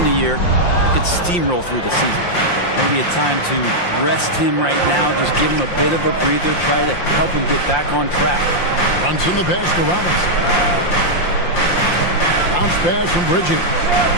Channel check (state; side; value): late; right; 5.7 ms